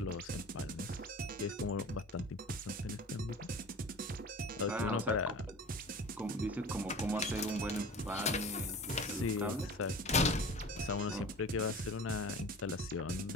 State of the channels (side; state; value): both; normal; correlation 0.39